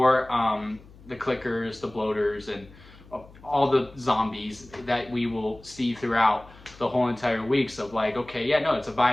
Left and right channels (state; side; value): noise; left; hum, 22 dB below the sound